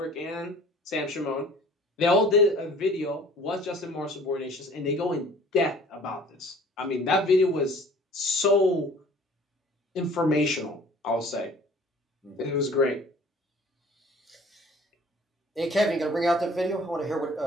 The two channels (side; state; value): both; normal; correlation 0.50